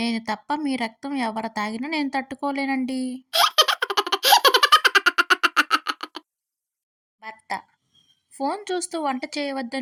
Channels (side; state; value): both; identical; correlation 1.00